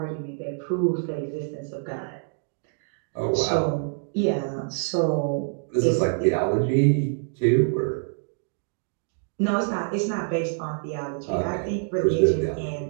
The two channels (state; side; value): silent; left; 61 dB below the other